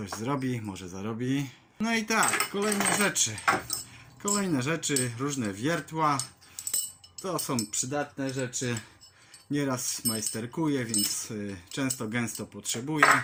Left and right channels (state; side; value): identical; both; correlation 1.00